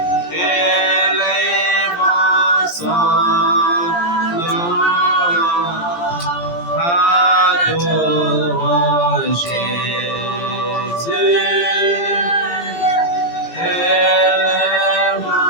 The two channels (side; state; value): right; late; 17 ms